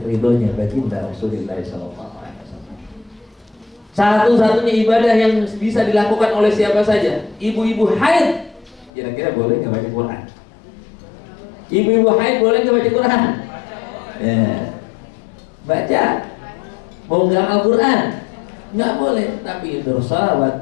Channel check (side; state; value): right; drops out; at 8.9 s